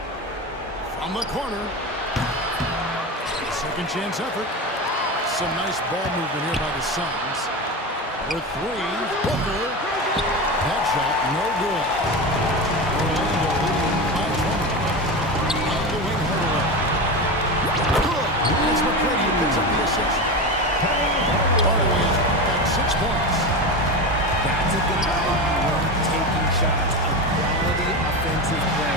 From the corner. Second chance effort. Some nice ball movement here by the Suns. With 3, Booker. That shot, no good. Orlando leading by 20. On the wing, Hardaway. Good. It's McGrady who picks up the assist. Hardaway has got 6 points. That's a good ball. Taking shots. A quality offensive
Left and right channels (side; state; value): both; normal; correlation 0.22